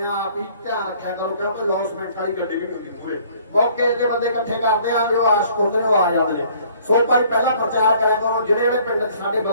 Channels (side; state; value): both; inverted; correlation -0.58